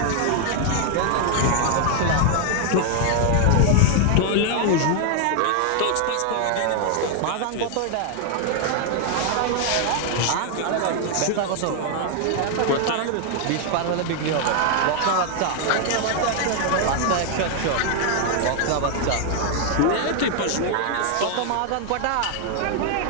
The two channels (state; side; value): different; both; correlation 0.00